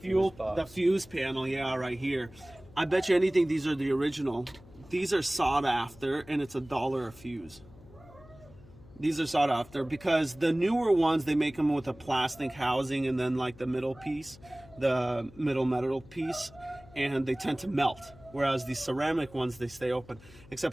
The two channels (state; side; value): noise; left; hum, 22 dB below the sound